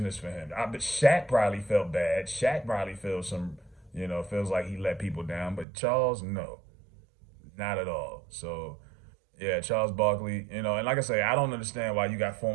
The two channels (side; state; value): left; drops out; at 5.7 s